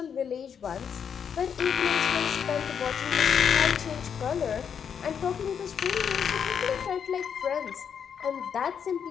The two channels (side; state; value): right; quieter; 7.5 dB